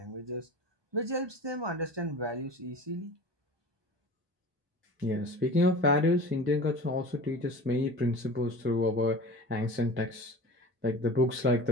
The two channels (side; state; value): left; late; 1.2 ms